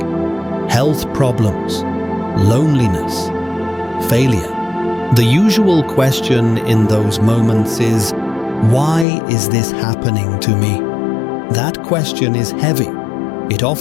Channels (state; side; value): drops out; right; at 9.1 s